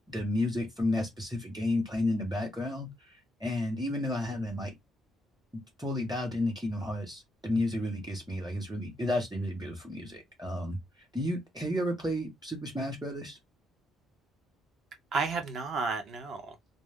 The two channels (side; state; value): both; normal; correlation 0.78